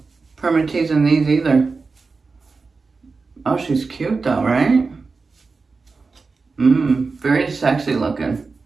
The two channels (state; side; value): quieter; left; 4.3 dB